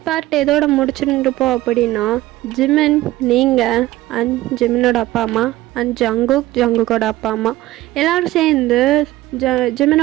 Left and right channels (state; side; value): quieter; left; 16.6 dB